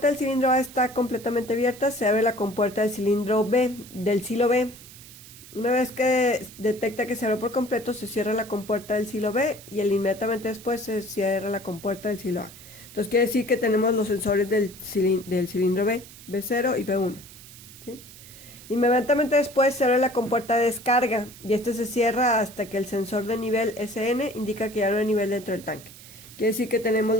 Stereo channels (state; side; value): noise; right; hiss, 18 dB below the sound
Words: del cilindro A está completamente abierta, se abre la compuerta del cilindro B, del silo B. Una vez que detecta que se abre por completo, se cierra la compuerta del silo B y inmediatamente después se cierra la compuerta del silo A. Entonces quiere decir que tenemos los sensores del cilindro B, B0 y B1. ¿Sí? Inmediatamente después se abre la compuerta de descarga y este se cierra hasta que el sensor de nivel SN indica que ya no hay nivel dentro del tanque. Quiere decir que tenemos